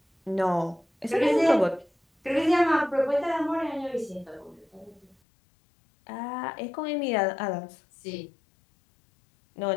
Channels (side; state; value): right; drops out; at 5.2 s